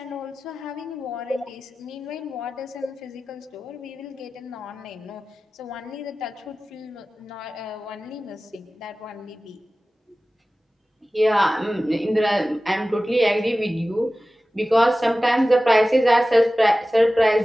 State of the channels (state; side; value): normal; both; correlation 0.96